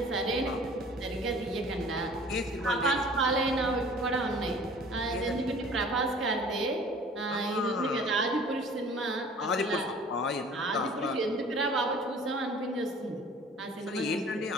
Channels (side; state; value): both; normal; correlation 0.48